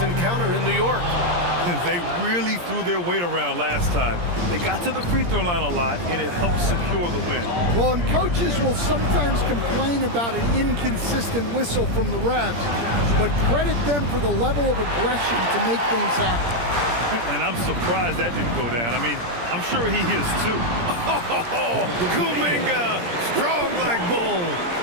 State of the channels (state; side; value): late; left; 17 ms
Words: encounter in New York. They really threw their weight around last time. They got to the free throw line a lot, and it helped secure the win. Well, and coaches will sometimes complain about an inconsistent whistle from the refs, but credit them for the level of aggression to make things happen. And I'm surprised that didn't go down. I mean, I'm sure he is too. Oh, Kuminga, strong like bull.